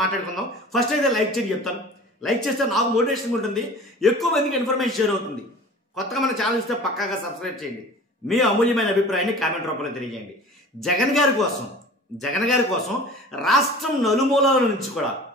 మాట్లాడుకుందాం. ఫస్ట్ అయితే లైక్ చేసి చెప్తాను. లైక్ చేస్తే నాకు మోటివేషన్ ఉంటుంది, ఎక్కువ మందికి ఇన్ఫర్మేషన్ షేర్ అవుతుంది. కొత్తగా మన ఛానల్ ఇస్తే పక్కాగా సబ్స్క్రైబ్ చేయండి. మీ అమూల్యమైన అభిప్రాయాన్ని కామెంట్ రూపంలో తెలియజేయండి. జగన్ గారి కోసం రాష్ట్రం నలుమూలల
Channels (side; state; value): both; normal; correlation 0.41